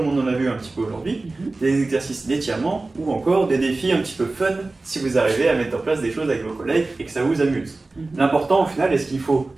on en a vu un petit peu aujourd'hui, des exercices d'étirement ou encore des défis un petit peu fun si vous arrivez à mettre en place des choses avec vos collègues et que ça vous amuse. L'important au final, et ce qu'il faut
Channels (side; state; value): left; quieter; 3.3 dB